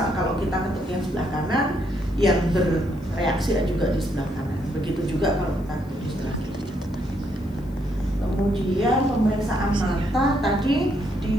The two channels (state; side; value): noise; left; hiss, 30 dB below the sound